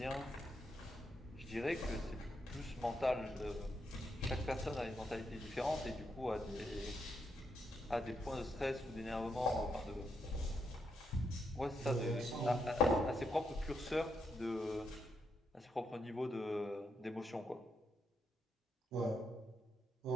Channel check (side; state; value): both; normal; correlation 0.80